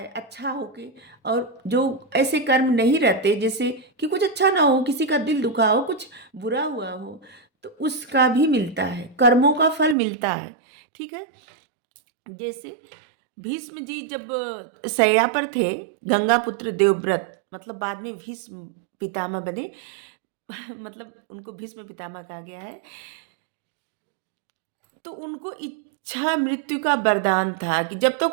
अच्छा होके। और जो ऐसे कर्म नहीं रहते, जैसे कि कुछ अच्छा ना हो, किसी का दिल दुखा हो, कुछ बुरा हुआ हो, तो उसका भी मिलता है, कर्मों का फल मिलता है, ठीक है। जैसे भीष्म जी जब शैया पर थे, गंगापुत्र देवव्रत मतलब बाद में भीष्म पितामह बने मतलब उनको भीष्म पितामह कहा गया है। तो उनको इच्छा मृत्यु का वरदान था कि जब तक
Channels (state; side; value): drops out; left; at 10.0 s